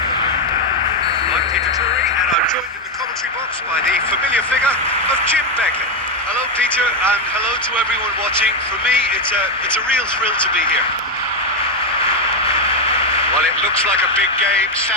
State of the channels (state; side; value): normal; both; correlation 0.06